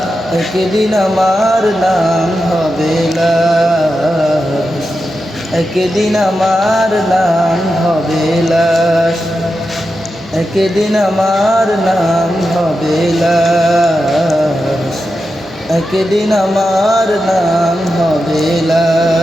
একদিন আমার নাম হবে লাশ, একদিন আমার নাম হবে লাশ, একদিন আমার নাম হবে লাশ, একদিন আমার নাম হবে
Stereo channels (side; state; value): both; normal; correlation 0.89